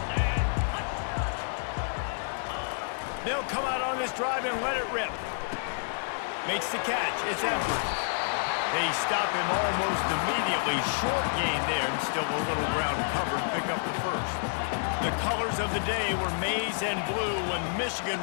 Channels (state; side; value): silent; right; digital silence